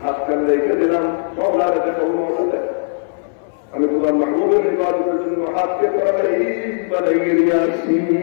হাত কান রেখে দিলাম, মওলার দেখা মওলা দেখ আমি তোমার মাহবুবের ইবাদতের জন্য হাতকে তাড়াতাড়ি বানাইয়ে নিয়ে আসি।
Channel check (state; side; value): silent; right; 63 dB below the other